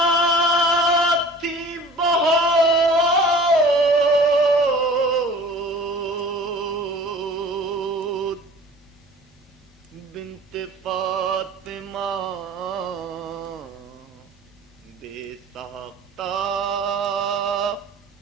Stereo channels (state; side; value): normal; both; correlation 0.45